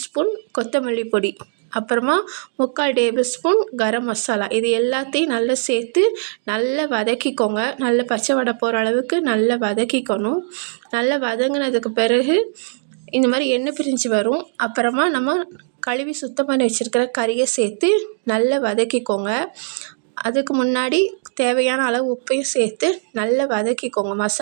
ஸ்பூன் கொத்தமல்லி பொடி, அப்புறமா 3/4 டேபிள் ஸ்பூன் கரம் மசாலா. இது எல்லாத்தையும் நல்லா சேர்த்து நல்லா வதக்கிக்கோங்க. நல்ல பச்சை வடை போகிற அளவுக்கு நல்லா வதக்கிக்கணும். நல்லா வதங்கினதுக்கு பிறகு இந்த மாதிரி எண்ணெய் பிரிஞ்சு வரும். அப்புறமா நம்ம கழுவி சுத்தம் பண்ணி வச்சுருக்கிற கறியை சேர்த்து நல்லா வதக்கிக்கோங்க. அதுக்கு முன்னாடி தேவையான அளவு உப்பையும் சேர்த்து நல்லா வதக்கிக்கோங்க.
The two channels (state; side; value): silent; left; digital silence